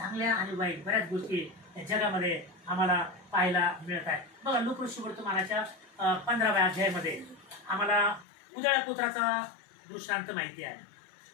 आणि वाईट बऱ्याच गोष्टी या जगामध्ये आम्हाला पाहायला मिळत आहे. बघा, लूका वर्तमानाच्या 15व्या अध्यायामध्ये आम्हाला उदळ्या पुत्राचा दृष्टांत माहिती आहे.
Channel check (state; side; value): drops out; right; at 8.2 s